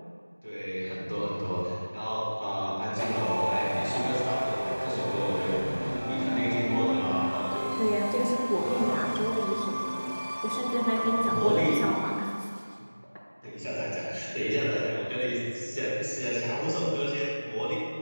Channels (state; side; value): inverted; both; correlation -1.00